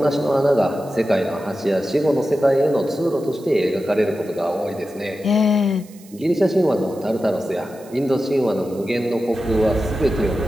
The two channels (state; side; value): noise; right; hiss, 24 dB below the sound